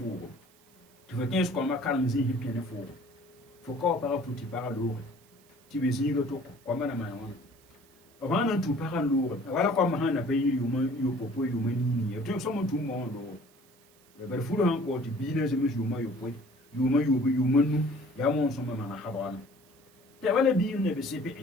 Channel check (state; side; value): noise; right; hiss, 30 dB below the sound